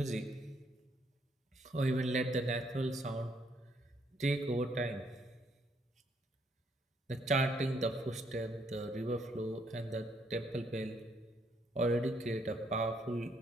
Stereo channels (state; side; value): normal; both; correlation 0.71